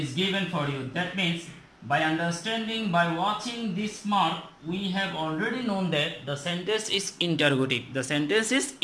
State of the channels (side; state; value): both; identical; correlation 1.00